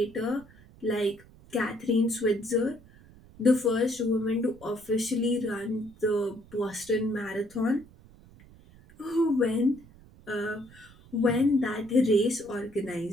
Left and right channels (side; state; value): right; noise; rumble, 24 dB below the sound